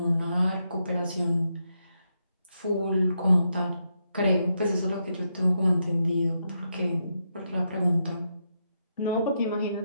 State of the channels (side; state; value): both; inverted; correlation -0.82